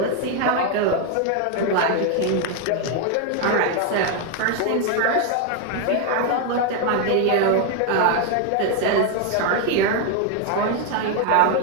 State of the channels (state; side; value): different; both; correlation 0.01